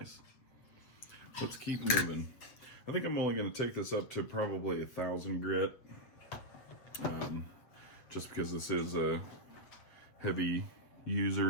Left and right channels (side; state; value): right; late; 7.7 ms